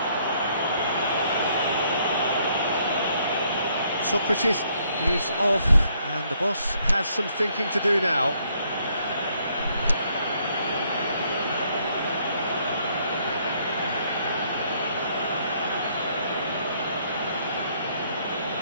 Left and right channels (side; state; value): both; inverted; correlation -0.69